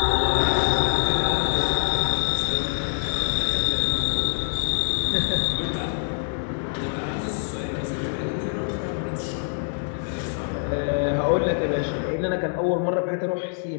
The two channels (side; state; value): right; silent; digital silence